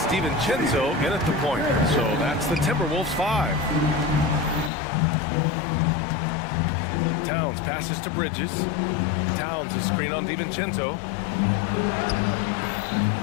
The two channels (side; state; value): right; drops out; at 4.7 s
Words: DiVincenzo in at the point. So that's the Timberwolves 5. Towns passes to Bridges. Towns is screen on DiVincenzo.